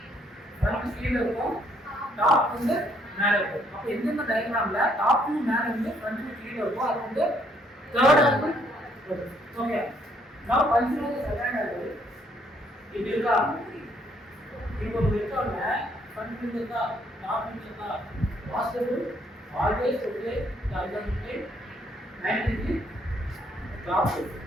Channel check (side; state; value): both; normal; correlation 0.68